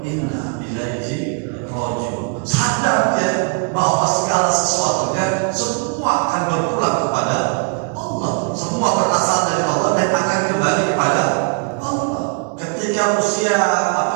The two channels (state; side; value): quieter; left; 39.2 dB